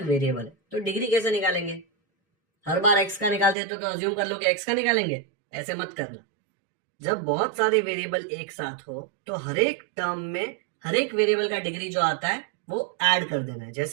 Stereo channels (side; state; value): left; drops out; at 3.6 s